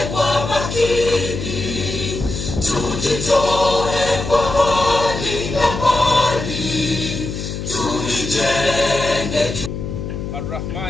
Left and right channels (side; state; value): left; noise; hum, 6 dB below the sound